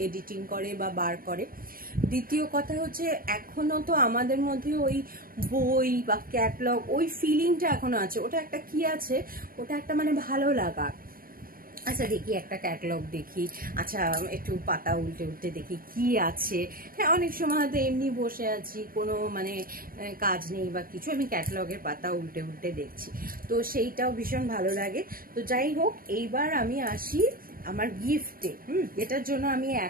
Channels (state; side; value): late; left; 0.42 ms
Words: এডিটিং করে বা বার করে। দ্বিতীয় কথা হচ্ছে এখনো তো আমাদের মধ্যে ওই বই বা ক্যাটালগ ওই ফিলিংটা এখনো আছে। ওটা একটা কি আছে, ওটা একটা মানে ভালো লাগা। আচ্ছা দেখি একটা ক্যাটালগ দেখি, আচ্ছা একটু পাতা উল্টে দেখি কি আছে। হ্যাঁ, অনেক সময় হয়তো এমনি বসে আছি, কোনো মানে কাজ নেই বা কিছু, আমি ক্যাটালগের পাতা উল্টে দেখছি, তো সেইটাও ভীষণ ভালো লাগে। তো যাই হোক, এইবার আমি আসি আমার গিফটে, এটার জন্য আমি